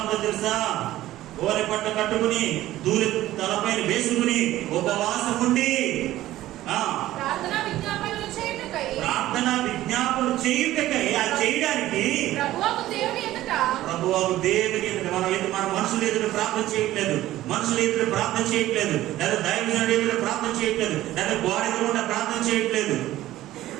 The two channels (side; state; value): left; quieter; 14.9 dB